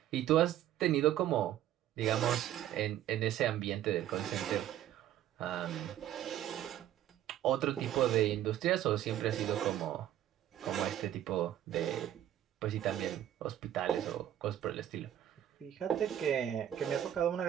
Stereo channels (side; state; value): left; quieter; 11.7 dB